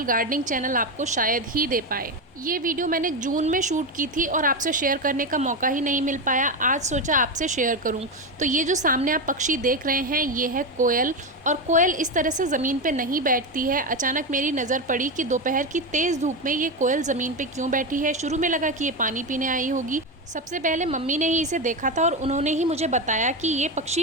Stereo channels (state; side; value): normal; both; correlation 0.14